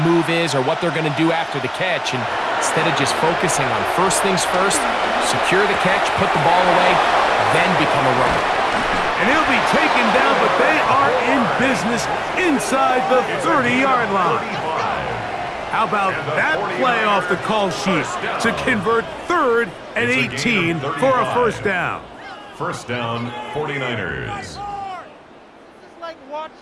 move is or what they're going to do after the catch. And instead of just focusing on first things first, secure the catch, put the ball away, then become a runner. And he'll be taken down, but they are in business inside the 30-yard line. How about that play off the call sheet to convert 3rd and 18 for a first down? First down, 49ers. This is like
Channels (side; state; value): both; identical; correlation 1.00